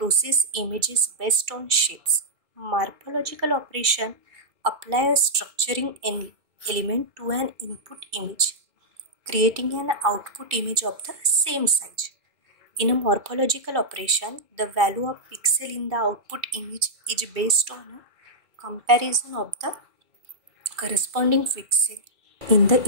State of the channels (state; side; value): late; left; 2.3 ms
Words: images based on shapes. Morphological operation apply a structuring element to an input image, creating an output image of the same size. In a morphological operation, the value of pixel in the output image is based on a comparison of the corresponding pixel in the